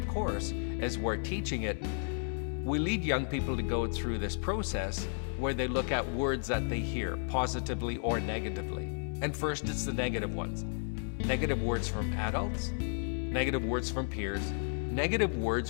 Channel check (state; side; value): silent; right; digital silence